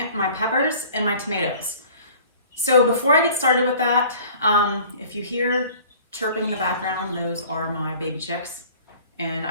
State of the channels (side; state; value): both; inverted; correlation -0.48